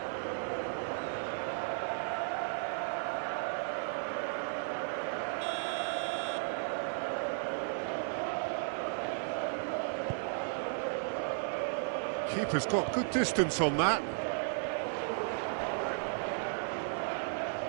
Keeper's got good distance on that.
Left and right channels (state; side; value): silent; left; digital silence